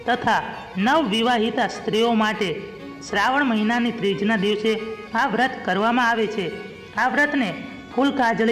તથા નવવિવાહિતા સ્ત્રીઓ માટે શ્રાવણ મહિનાની ત્રીજના દિવસે આ વ્રત કરવામાં આવે છે. આ વ્રતને ફૂલ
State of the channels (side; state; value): both; identical; correlation 1.00